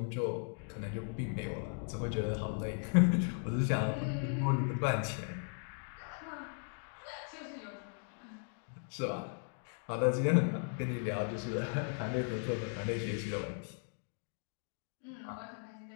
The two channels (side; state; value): right; silent; 53 dB below the other